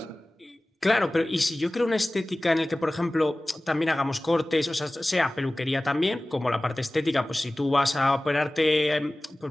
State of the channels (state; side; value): normal; both; correlation 0.98